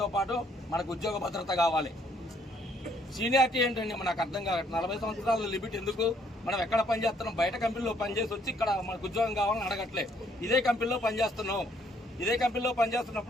పాటు మనకు ఉద్యోగ భద్రత కావాలి. సీనియారిటీ ఏంటండి నాకు అర్థం కావట్లేదు. 40 సంవత్సరాల లిమిట్ ఎందుకు? మనం ఎక్కడ పనిచేస్తున్నాం? బయట కంపెనీలో పనిచేసి వచ్చి ఇక్కడ మనకు ఉద్యోగం కావాలని అడగట్లే. ఇదే కంపెనీలో పనిచేస్తున్నాం. ఇదే కంపెనీలో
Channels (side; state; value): both; normal; correlation 0.66